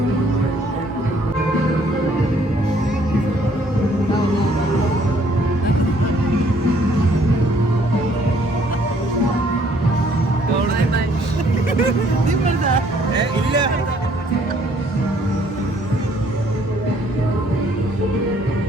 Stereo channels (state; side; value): normal; both; correlation 0.63